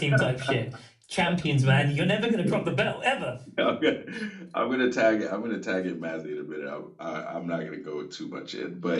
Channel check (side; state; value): both; identical; correlation 1.00